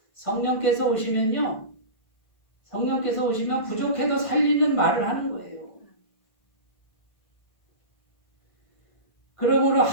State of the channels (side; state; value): right; late; 1.5 ms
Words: 성령께서 오시면 부족해도 살리는 말을 하는 거예요. 그러므로